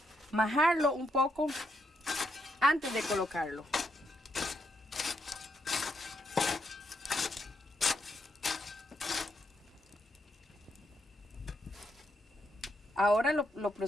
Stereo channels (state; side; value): normal; both; correlation 0.79